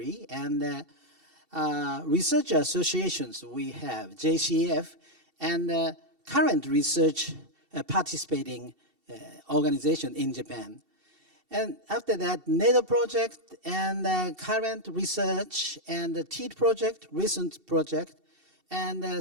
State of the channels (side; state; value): left; late; 2.7 ms